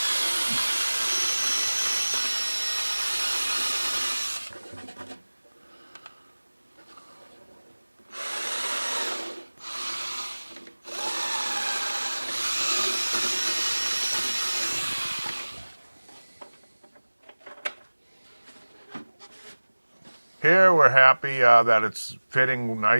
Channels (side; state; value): both; inverted; correlation -1.00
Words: Here we're happy that it's fitting